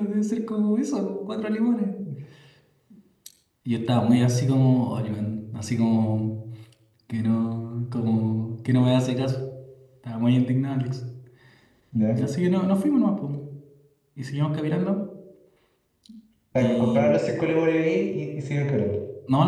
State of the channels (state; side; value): identical; both; correlation 1.00